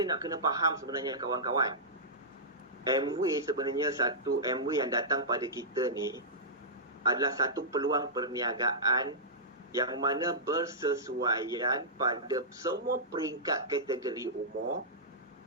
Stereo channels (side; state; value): both; normal; correlation -0.14